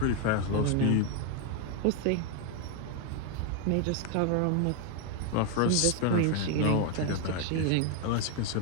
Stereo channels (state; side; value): different; both; correlation 0.01